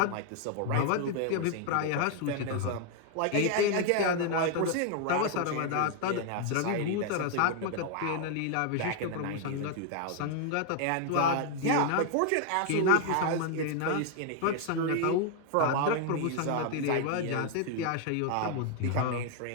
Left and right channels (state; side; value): different; both; correlation 0.00